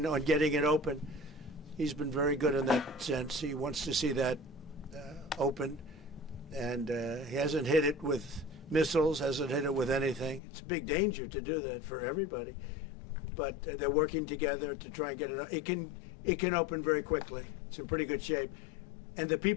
on getting it open. He's been very good in that sense. He wants to see that open. And he hasn't hit it with missiles, hasn't hit it with anything. It's a big danger to do that for everybody. But they're working together to try and get it. It can open very quickly. It's in pretty good shape. And the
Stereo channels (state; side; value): drops out; right; at 10.4 s